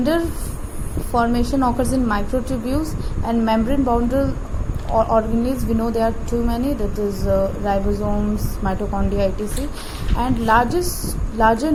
formation occurs in microtubules and membrane boundary organelles, we know there are too many, that is ribosomes, mitochondria, etc. And larger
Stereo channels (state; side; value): identical; both; correlation 1.00